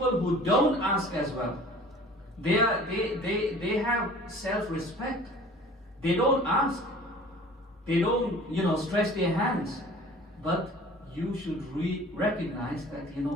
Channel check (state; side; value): normal; both; correlation 0.46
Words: who don't ask as well. They have self-respect. They don't ask. They don't, stretch their hands. But you should recognize that,